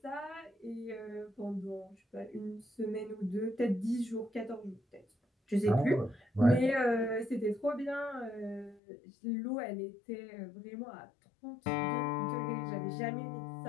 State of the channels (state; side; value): drops out; right; at 8.8 s